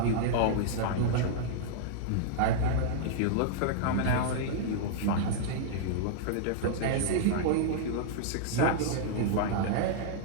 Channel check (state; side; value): different; both; correlation -0.01